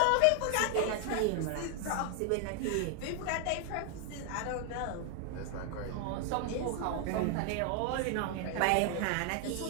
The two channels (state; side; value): different; both; correlation 0.00